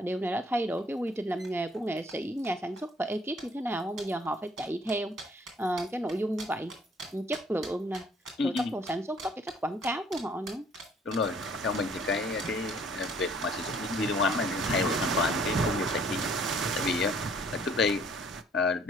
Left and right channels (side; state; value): both; normal; correlation 0.59